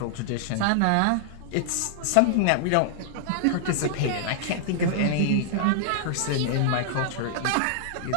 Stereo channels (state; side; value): different; both; correlation -0.01